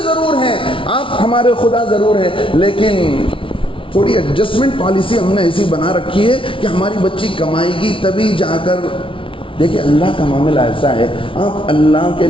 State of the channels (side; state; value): right; late; 0.25 ms